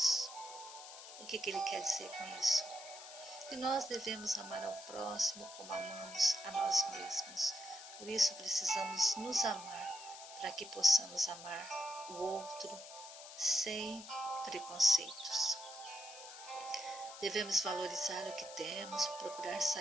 O que ele quer dizer com isso? Que nós devemos amar ao próximo como amamos a nós mesmos. Por isso precisamos nos amar, para que possamos amar o outro sem preconceitos. Devemos valorizar o que temos, procurar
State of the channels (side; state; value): left; noise; hiss, 13 dB below the sound